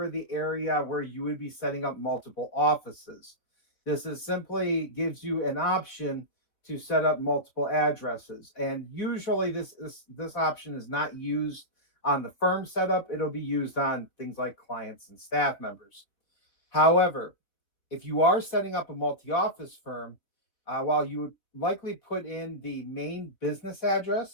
the area where you would be setting up multiple offices. This is simply gives you an option to set up multiple addresses. And usually this option is not used on the firm setup. It'll be used on things like clients and staff members. However, if you are setting up a multi-office firm, while you would likely put in the main business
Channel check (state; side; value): late; right; 4.0 ms